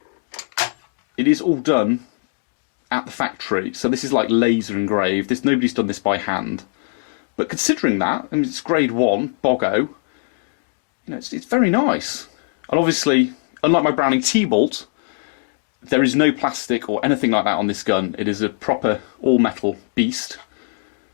It is all done at the factory, so this is like laser engraved. Nobody's done this by hand. But considering that, I mean, it's grade 1, Boggo, you know, it's very nice. And obviously, unlike my Browning T-Bolt, there is no plastic or anything like that on this gun. It is a proper all-metal beast.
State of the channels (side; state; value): right; silent; digital silence